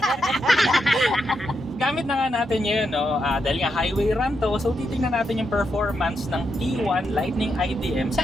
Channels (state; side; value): normal; both; correlation 0.83